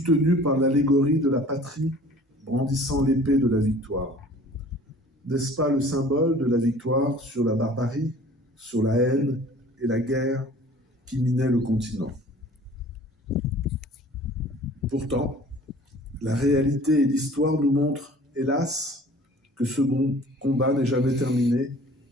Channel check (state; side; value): normal; both; correlation 0.48